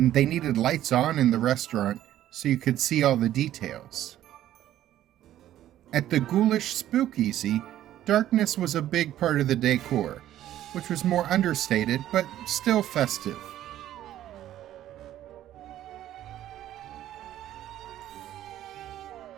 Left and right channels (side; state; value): left; quieter; 12.6 dB